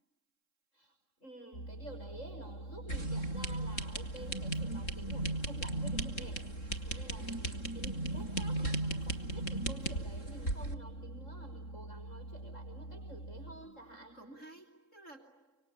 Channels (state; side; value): late; right; 3.7 ms